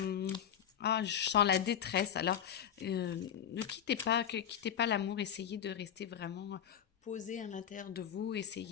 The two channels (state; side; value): quieter; right; 9.2 dB